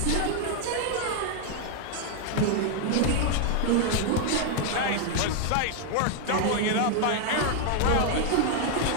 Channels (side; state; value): both; different; correlation 0.00